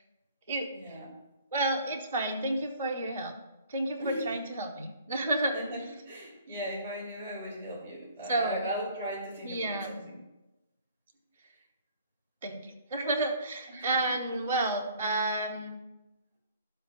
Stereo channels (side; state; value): both; inverted; correlation -0.54